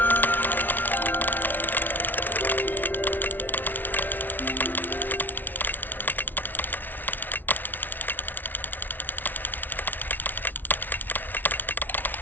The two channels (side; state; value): right; late; 0.087 ms